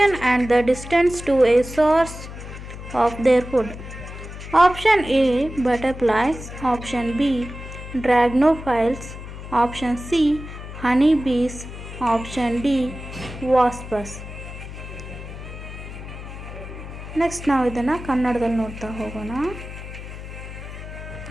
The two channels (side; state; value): left; noise; hum, 11 dB below the sound